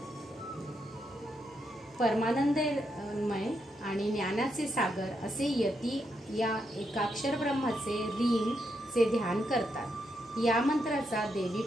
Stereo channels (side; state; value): both; normal; correlation 0.81